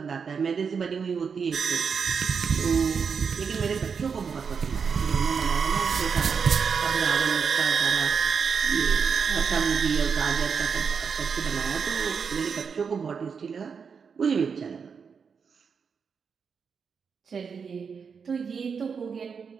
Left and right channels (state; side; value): quieter; left; 6.0 dB